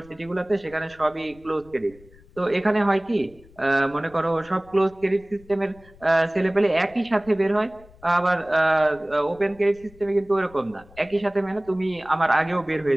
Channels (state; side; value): noise; left; rumble, 25 dB below the sound